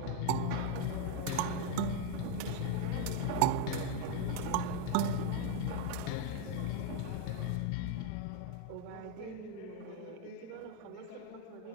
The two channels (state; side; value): different; both; correlation 0.01